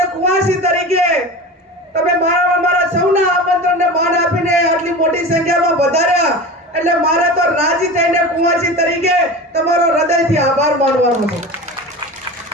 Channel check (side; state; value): both; normal; correlation 0.31